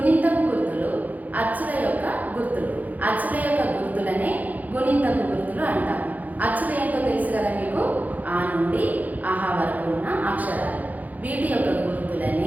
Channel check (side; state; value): left; late; 0.079 ms